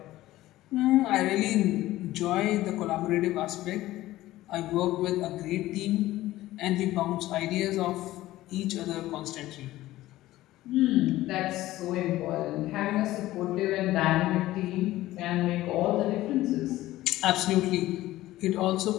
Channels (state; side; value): quieter; right; 16.1 dB